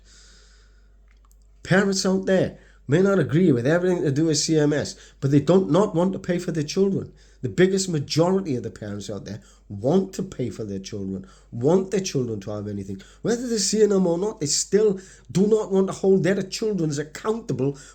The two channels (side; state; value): both; identical; correlation 1.00